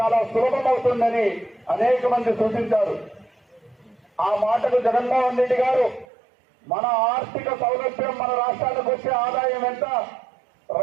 సులభమవుతుందని అనేక మంది సూచించారు. ఆ మాటకు జగన్మోహన్ రెడ్డి గారు మన ఆర్థిక సౌలభ్యం, మన రాష్ట్రానికి వచ్చే ఆదాయం ఎంత,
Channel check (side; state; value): left; drops out; at 6.1 s